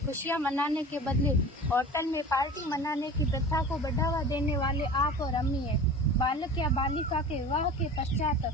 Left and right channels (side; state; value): both; normal; correlation 0.37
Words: खुशियां मनाने के बदले होटल में पार्टी मनाने की प्रथा को बढ़ावा देने वाले आप और अम्मी है। बालक या बालिका के विवाह के पश्चात